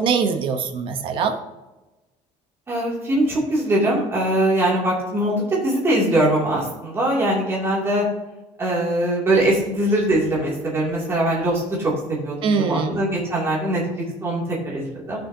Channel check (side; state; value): both; normal; correlation 0.51